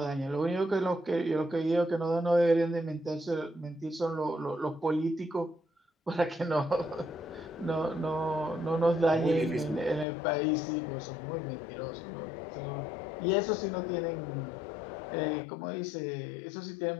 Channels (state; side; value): drops out; right; at 10.1 s